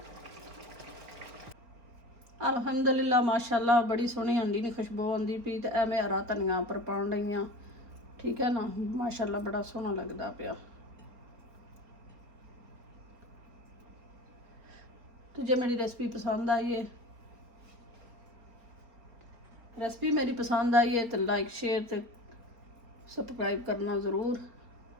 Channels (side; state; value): left; late; 4.3 ms